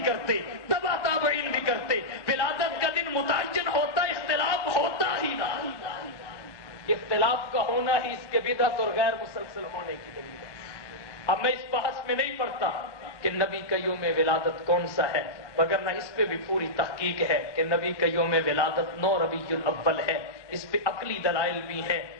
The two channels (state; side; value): late; right; 1.2 ms